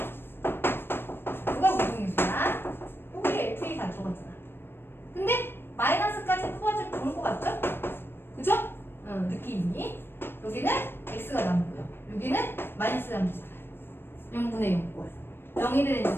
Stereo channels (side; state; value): right; late; 0.10 ms